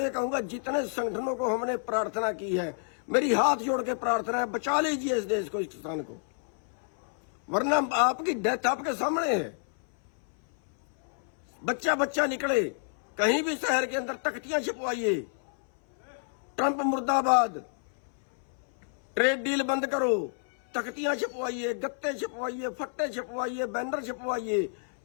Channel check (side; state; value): right; silent; 58 dB below the other